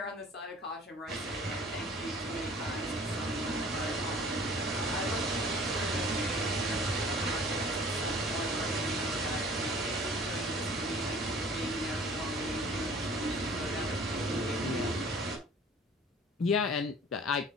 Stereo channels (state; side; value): normal; both; correlation 0.49